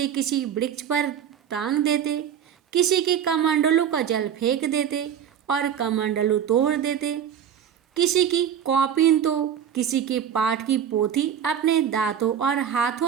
किसी वृक्ष पर टांग देते, किसी की कमंडलू का जल फेंक देते और कमंडलू तोड़ देते, किसी की कॉपिन तो किसी के पाठ की पोथी अपने दांतों और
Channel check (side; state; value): left; quieter; 8.8 dB